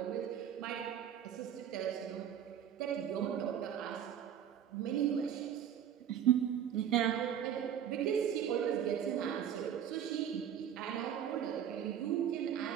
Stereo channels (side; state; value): left; quieter; 9.4 dB